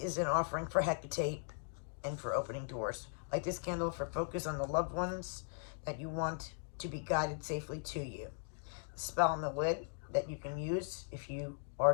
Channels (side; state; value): right; silent; digital silence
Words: is an offering for Hecate and for opening doors Light this candle for focus on the loved ones that you want to be guided safely to you. The spell on the lid that you can use if you are